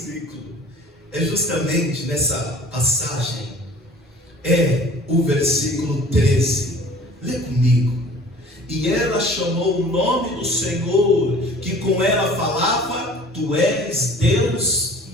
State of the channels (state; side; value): normal; both; correlation 0.47